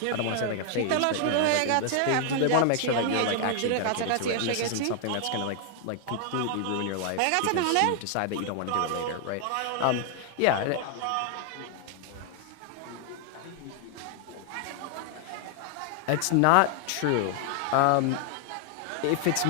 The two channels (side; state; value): both; different; correlation 0.00